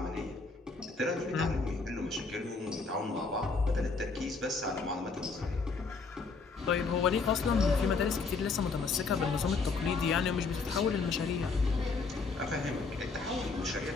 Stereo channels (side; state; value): right; quieter; 4.3 dB